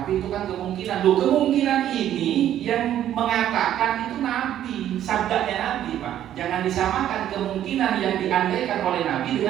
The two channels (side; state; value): left; quieter; 11.4 dB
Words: itu kan kemungkinan. Loh, kemungkinan ini yang mengatakan itu Nabi, sabdanya Nabi, Pak. Jangan disamakan kemungkinan yang diandaikan oleh Nabi